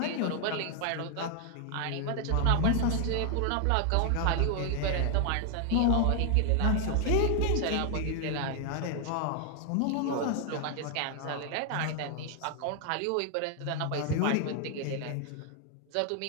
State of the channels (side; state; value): both; different; correlation 0.00